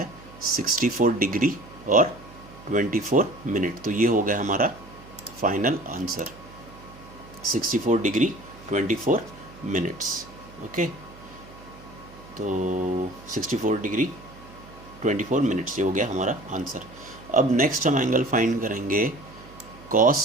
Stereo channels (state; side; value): noise; right; hum, 20 dB below the sound